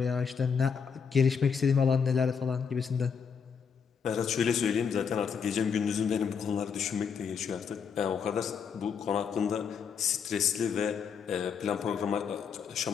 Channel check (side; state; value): right; quieter; 6.5 dB